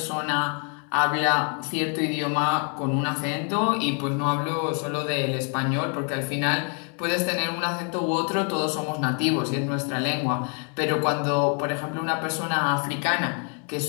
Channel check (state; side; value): quieter; right; 39.3 dB